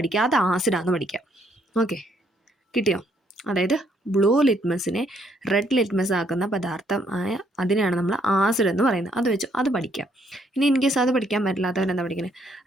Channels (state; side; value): normal; both; correlation 0.70